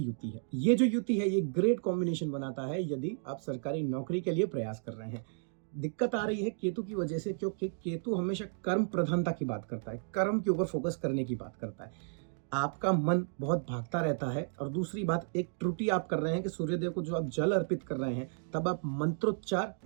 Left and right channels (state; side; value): silent; left; digital silence